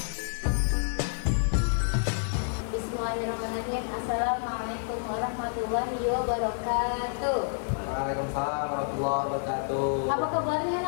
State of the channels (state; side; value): silent; right; digital silence